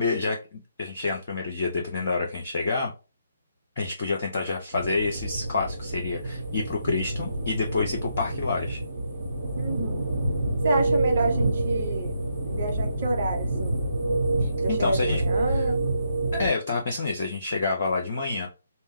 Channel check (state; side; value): inverted; both; correlation -0.77